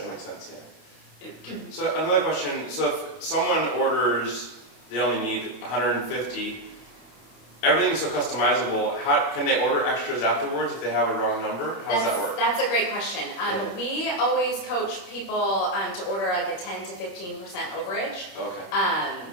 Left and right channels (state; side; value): late; right; 27 ms